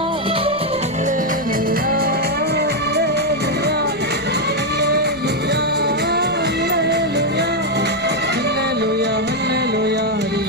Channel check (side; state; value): left; noise; rumble, 26 dB below the sound